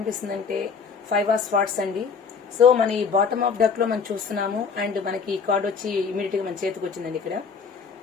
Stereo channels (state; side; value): quieter; right; 5.7 dB